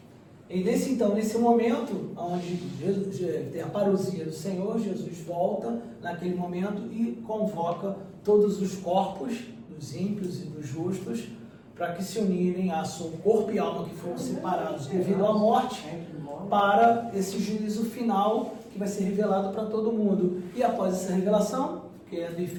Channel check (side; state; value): both; identical; correlation 1.00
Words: E nesse momento, onde tem a parousia do Senhor, Jesus volta naquele momento e convoca todos os corpos dos ímpios e dos justos para que se unirem a seu corpo e alma que foram separados devido à morte para esse juízo final que vai ser revelado para todo mundo. E após essa revelação, quem é do